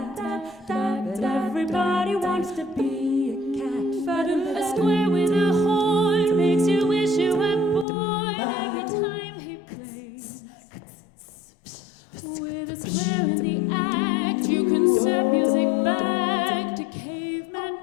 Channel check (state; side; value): drops out; right; at 7.9 s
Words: but everybody wants to be a cat. A square with a horn makes you wish you were born every time he plays. With a square in the act, you can set music back to